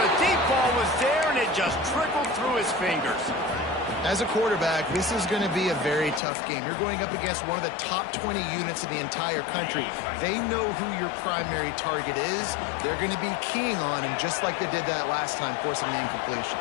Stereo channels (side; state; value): right; drops out; at 6.2 s